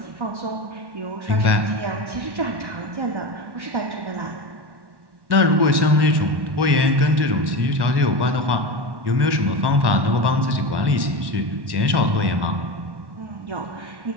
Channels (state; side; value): late; left; 1.1 ms